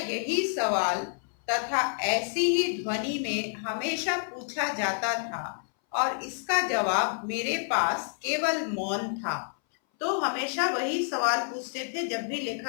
सवाल तथा ऐसी ही ध्वनि में हमेशा पूछा जाता था, और इसका जवाब मेरे पास केवल मौन था। तो हमेशा वही सवाल पूछते थे जब भी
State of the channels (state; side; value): silent; right; 59 dB below the other